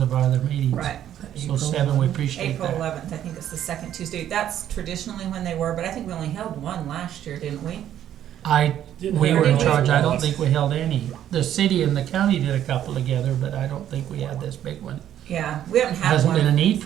our other meetings. Right. So 7, we appreciate April that. 11th, I think it's the second Tuesday. That's traditionally when they were, but I think we only held one last year, didn't we? We were in Didn't charge, we? I don't think we held any. The city and the county did a couple together, but I don't think we had this big one. Yeah, we haven't had Hasn't been a one. need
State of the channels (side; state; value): left; quieter; 11.0 dB